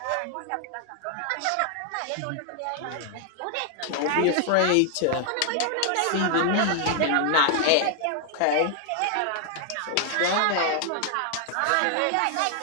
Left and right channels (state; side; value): different; both; correlation 0.00